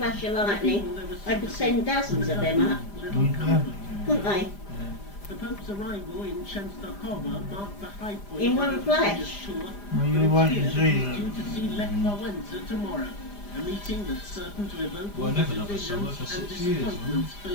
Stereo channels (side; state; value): right; late; 5.0 ms